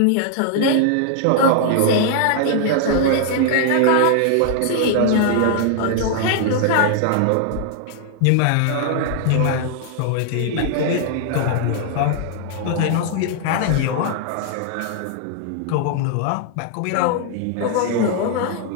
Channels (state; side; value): different; both; correlation -0.01